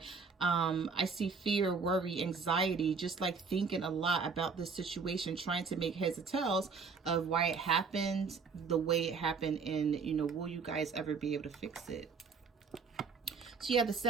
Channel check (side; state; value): left; quieter; 5.1 dB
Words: I see fear, worry, anxiety, just like thinking a lot about this situation, trying to make heads or tails of why it happened the way it happened, and, you know, will you guys ever be able to fix it? So you have the